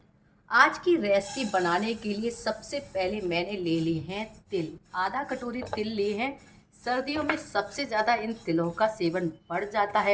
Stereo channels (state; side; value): identical; both; correlation 1.00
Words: आज की रेसिपी बनाने के लिए सबसे पहले मैंने ले लिए हैं तिल। आधा कटोरी तिल लिए हैं। सर्दियों में सबसे ज़्यादा इन तिलों का सेवन बढ़ जाता